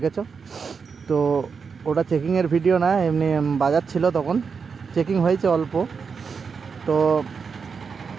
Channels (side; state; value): left; quieter; 5.7 dB